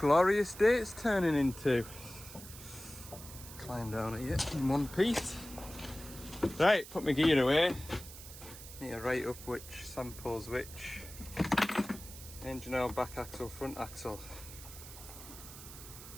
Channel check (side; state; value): right; noise; hiss, 14 dB below the sound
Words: day it's turning into. Climb down at you in one piece. Right, put my gear away. Need to write up which samples which. Engine oil, back axle, front axle.